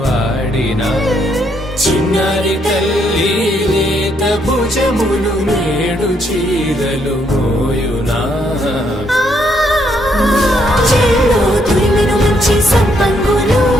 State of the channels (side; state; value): both; normal; correlation 0.73